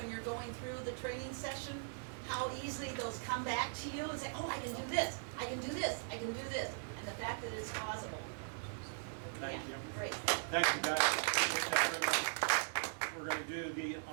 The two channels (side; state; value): left; silent; digital silence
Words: you're going through the training session how easily those come back to you and say, oh, I can do this, I can do this, I can do this. And the fact that it's possible. Thank you. Great. Thank you, guys. Appreciate that very much. We're going to do the